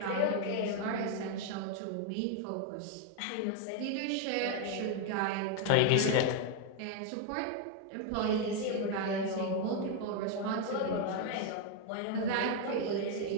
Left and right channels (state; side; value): different; both; correlation 0.01